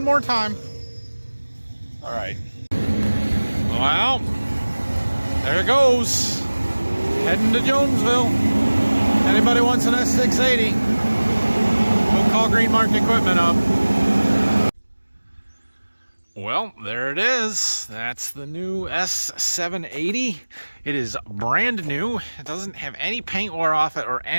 more time. All right. Well, there it goes. Heading to Jonesville. Anybody wants an S780, go call Green Mark Equipment up. Well, there it is. That's the new S780. It is brand new. It doesn't have any paint wear off it or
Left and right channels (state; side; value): inverted; both; correlation -1.00